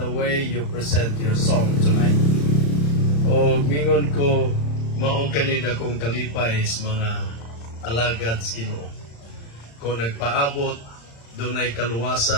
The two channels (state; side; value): late; right; 35 ms